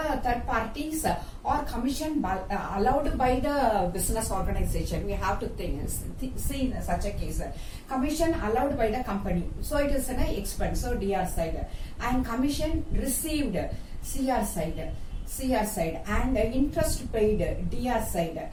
third parties or commission allowed by the business organization, we have to see in such a case. Commission allowed by the company, so it is an expense, so DR side. And commission received, CR side. And interest paid, DR side.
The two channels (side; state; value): both; identical; correlation 1.00